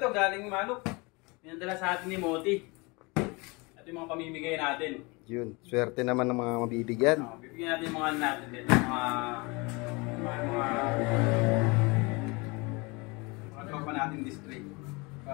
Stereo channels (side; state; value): right; quieter; 27.1 dB